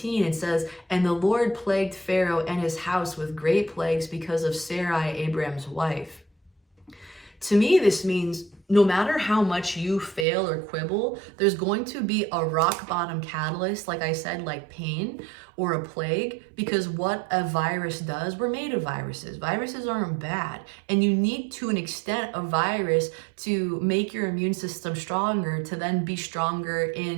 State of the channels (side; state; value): left; drops out; at 10.2 s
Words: and says, and the Lord plagued Pharaoh and his house with great plagues because of Sarai, Abram's wife. To me, this means no matter how much you fail or quibble, there's going to be a rock bottom catalyst, like I said, like pain or a plague, because what a virus does, we're made of viruses. Viruses aren't bad. And you need, to an extent, a virus to make your immune system stronger, to then be stronger